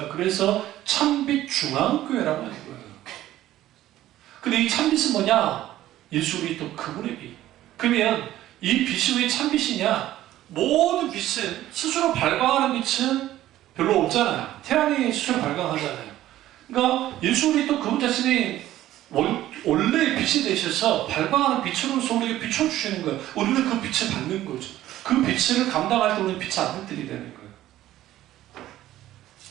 그래서 참빛 중앙교회라고 하는 거예요. 근데 이 참빛은 뭐냐? 예수 그리스도 그분의 빛. 그러면 이 빛이 왜 참빛이냐? 모든 빛은 스스로 발광하는 빛은 별로 없잖아요. 태양이 스스로 발광하잖아요. 그러니까 예수 그리스도 그분 자신이 원래의 빛이 되셔서 발광하는 빛으로서 우리에게 비춰주시는 거예요. 우리는 그 빛을 받는 거죠. 그 빛을 감당할 때 우리는 빛의 아들들이 되는 거예요.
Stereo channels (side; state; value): left; quieter; 14.0 dB